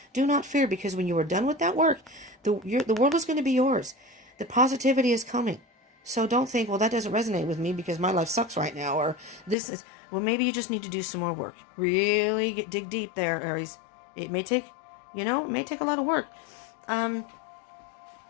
Do not fear, because when you are done with that work, the world is going to be yours. The positivity is coming. So don't think, well, that doesn't resonate with me because my life sucks right now. Or this is, well, maybe you just need to do some more work. Really dig deep there, Aries. It may take, it may take a lot of work. A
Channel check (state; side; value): drops out; right; at 9.6 s